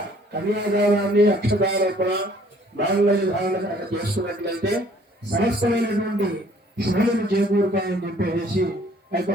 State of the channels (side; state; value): both; normal; correlation 0.59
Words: కన్యాదానాన్ని అక్షదారోపణ మాంగళ్య ధారణ చేసుకున్నట్లయితే సమస్తమైనటువంటి శుభ్రతను చేకూరుతాయని చెప్పేసి ఆ యొక్క